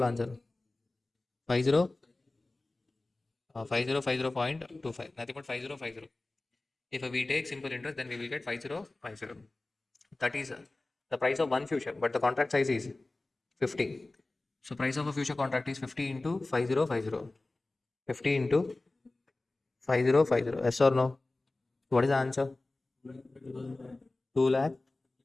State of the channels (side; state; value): right; quieter; 3.0 dB